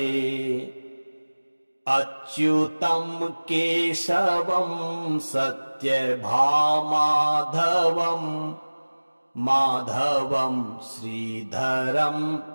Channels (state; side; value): inverted; both; correlation -1.00